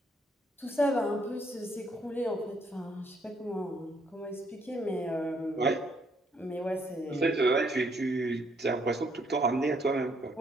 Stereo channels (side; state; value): both; normal; correlation 0.70